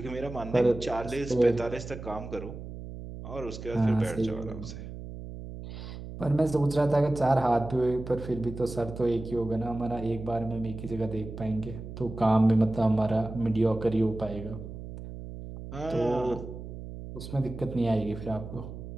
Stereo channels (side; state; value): right; noise; hum, 11 dB below the sound